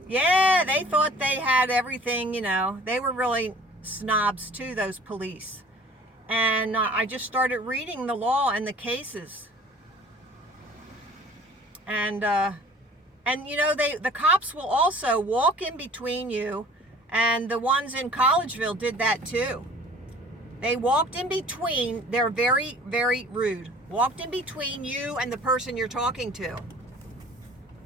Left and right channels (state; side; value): normal; both; correlation 0.49